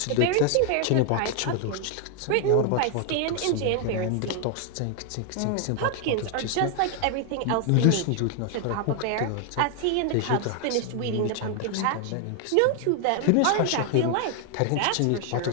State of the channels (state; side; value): different; both; correlation 0.00